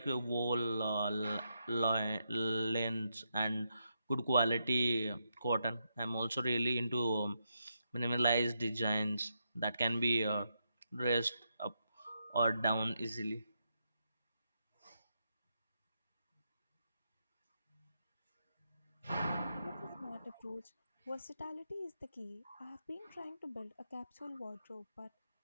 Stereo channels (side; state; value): both; inverted; correlation -0.82